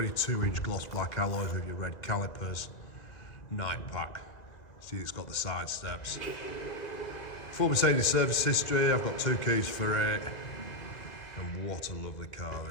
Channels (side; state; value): right; late; 1.9 ms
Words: gloss black alloys with your red calipers. Night pack. See, it's got the side steps. Full Mercedes service history. I've got 2 keys for it. And what a lovely car